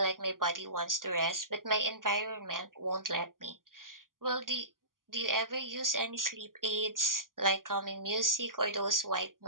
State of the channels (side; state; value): left; late; 0.90 ms